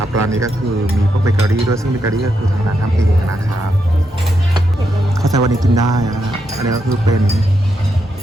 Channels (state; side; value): normal; both; correlation 0.82